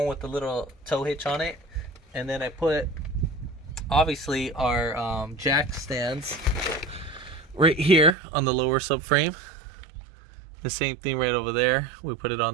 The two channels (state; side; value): drops out; left; at 8.2 s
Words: with the little tow hitch on it, and then I put obviously our jack stands right here on the lower subframe. The same thing right over there, we put it